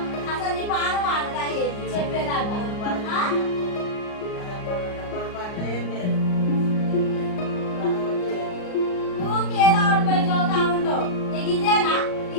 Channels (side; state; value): right; late; 38 ms